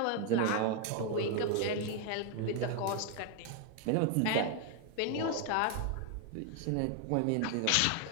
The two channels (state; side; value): different; both; correlation 0.01